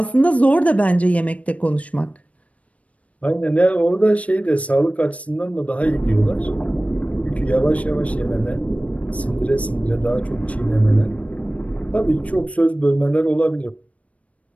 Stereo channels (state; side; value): late; right; 0.066 ms